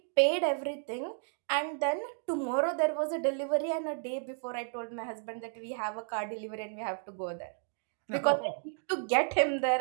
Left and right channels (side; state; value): left; silent; digital silence